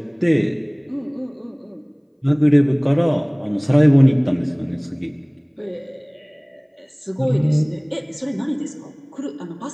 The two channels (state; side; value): identical; both; correlation 1.00